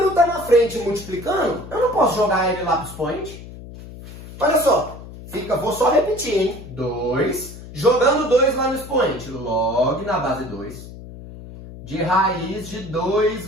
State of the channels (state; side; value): noise; left; hum, 14 dB below the sound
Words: está na frente multiplicando, eu não posso jogar ele lá para os expoente? Olha só, vou só repetir, hein? 2, jogando 2 lá no expoente, log na base 2, de raiz de 2